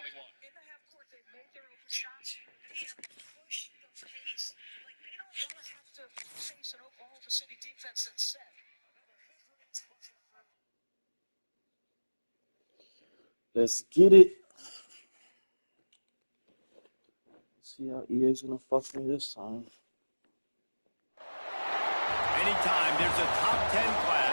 In the half court, they've made their open shots. They have pushed the pace. Like, they don't want to have to face an Oklahoma City defense that's set. Let's get it. Let's see how EA's gonna fuck me this time. Anytime there's a top 10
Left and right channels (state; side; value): inverted; both; correlation -1.00